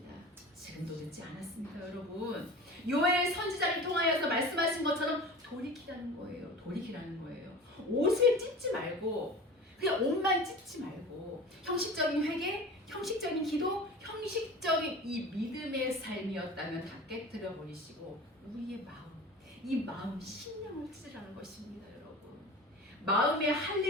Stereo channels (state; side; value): normal; both; correlation 0.36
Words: 지금도 늦지 않았습니다. 여러분, 요엘 선지자를 통하여서 말씀하신 것처럼 돌이키라는 거예요. 돌이키라는 거예요. 옷을 찢지 말고 그냥 옷만 찢지 말고 형식적인 회개, 형식적인 기도, 형식적인 이 믿음의 삶이었다면 다 깨뜨려 버리시고 우리의 마음, 이 마음 심령을 찢으라는 것입니다. 여러분, 마음의